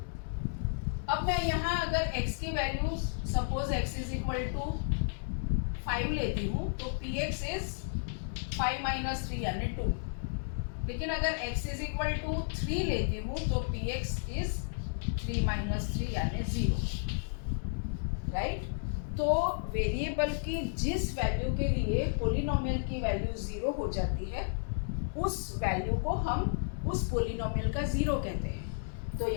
अब मैं यहाँ अगर x की value suppose x is equal to 5 लेती हूँ तो px इज 5 माइनस 3 यानी 2। लेकिन अगर x इज इक्वल टू 3 लेती हूँ तो px इज 3 माइनस 3 यानी 0, राइट। तो वेरिएबल की जिस वैल्यू के लिए पोलिनोमियल की वैल्यू 0 हो जाती है उस वैल्यू को हम उस पोलिनोमियल का जीरो कहते हैं। तो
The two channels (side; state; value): right; silent; digital silence